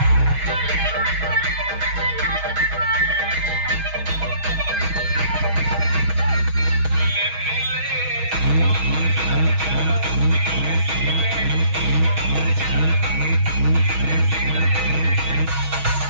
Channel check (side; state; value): left; late; 6.3 ms